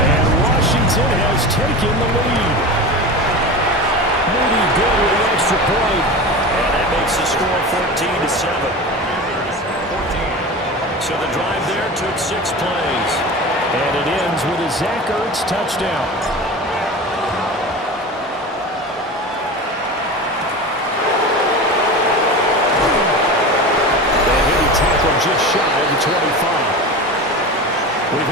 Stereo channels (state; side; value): normal; both; correlation 0.29